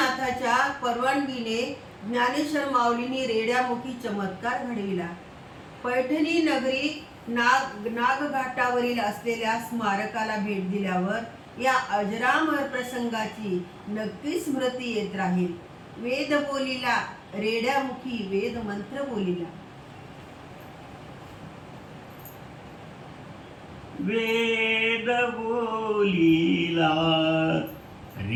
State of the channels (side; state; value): both; identical; correlation 1.00